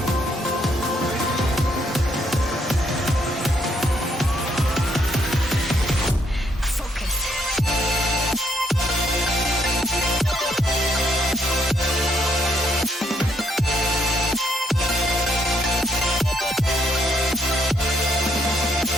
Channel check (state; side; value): normal; both; correlation 0.71